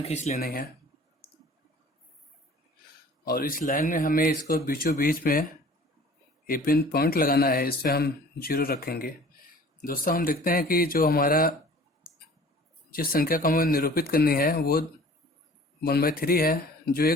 खींच लेनी है और इस लाइन में हमें इसको बीचों बीच में एक पिन पॉइंट लगाना है। इस पर हम 0 रखेंगे। दोस्तों हम देखते हैं कि जो हमारा जिस संख्या को हमें निरूपित करनी है वो 1/3 है, जो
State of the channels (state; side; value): normal; both; correlation 0.48